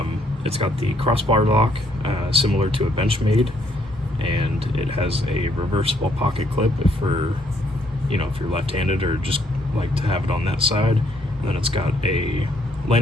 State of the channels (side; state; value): both; normal; correlation 0.69